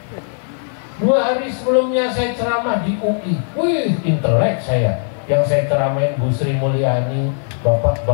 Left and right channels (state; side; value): silent; right; 56 dB below the other